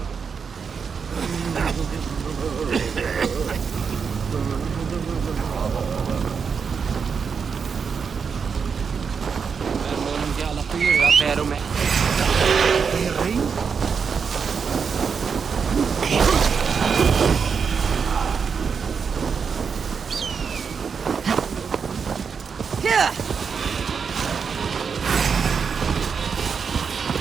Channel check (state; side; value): quieter; left; 6.1 dB